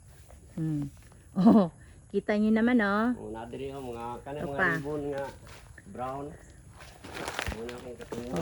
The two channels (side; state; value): both; identical; correlation 1.00